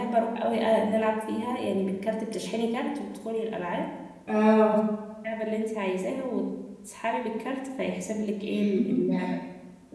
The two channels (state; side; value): identical; both; correlation 1.00